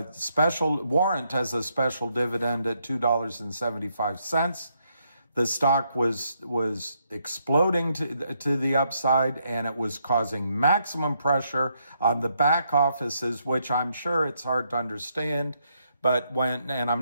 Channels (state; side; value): inverted; both; correlation -0.76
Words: special warrant as a special dividend at $2.75. The stock was exploding to the upside, and it was causing maximum pressure on the back offices, which I'm sure it's hard to understand. But I'm